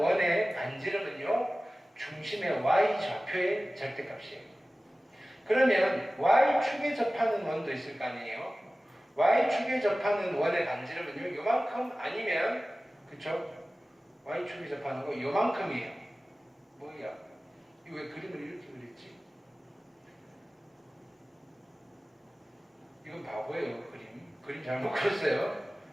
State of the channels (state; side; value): normal; both; correlation 0.97